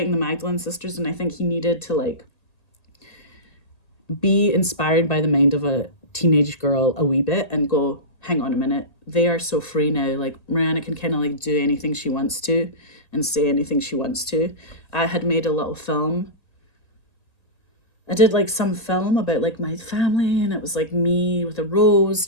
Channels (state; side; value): late; right; 1.9 ms